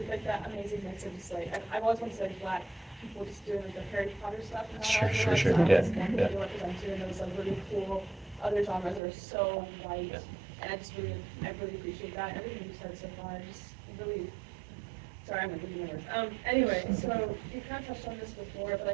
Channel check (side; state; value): left; drops out; at 9.0 s